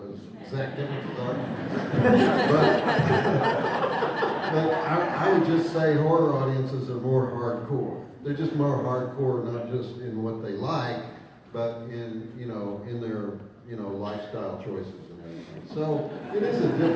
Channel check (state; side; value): identical; both; correlation 1.00